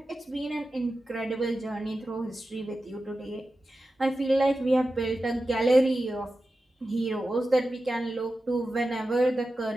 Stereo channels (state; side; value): normal; both; correlation 0.93